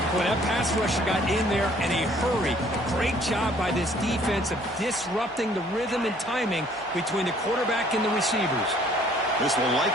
Boy, that pass rusher got in there in a hurry. Great job by this defense of disrupting the rhythm and timing between the quarterback and the receivers. This will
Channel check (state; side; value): normal; both; correlation 0.59